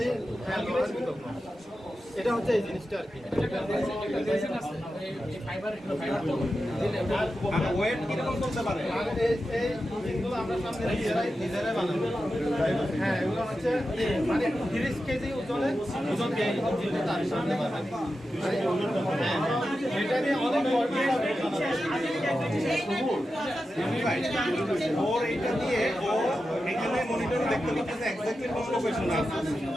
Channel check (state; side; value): normal; both; correlation 0.91